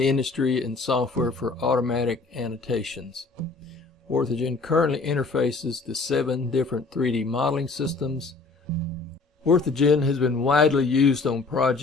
industry in software for automatic annotations. OrthoGen currently interfaces to 7 different 3D modeling systems. OrthoGen has been widely used on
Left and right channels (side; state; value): right; quieter; 3.9 dB